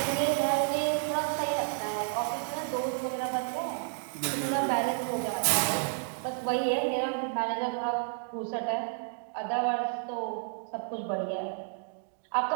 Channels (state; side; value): silent; left; 57 dB below the other